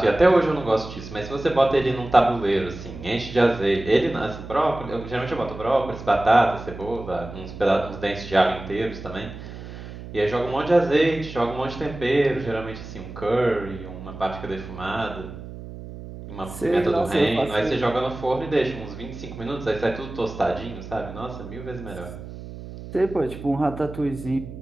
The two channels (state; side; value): noise; right; hum, 12 dB below the sound